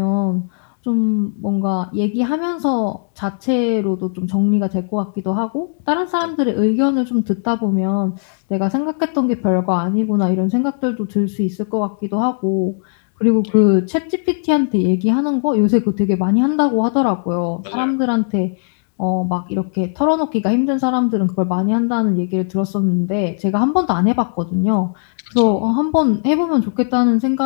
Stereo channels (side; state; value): right; silent; digital silence